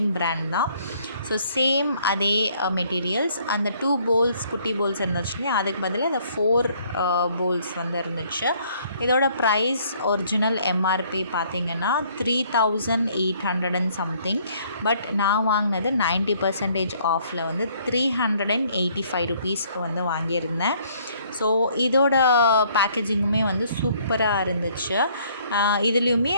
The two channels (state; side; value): inverted; both; correlation -0.63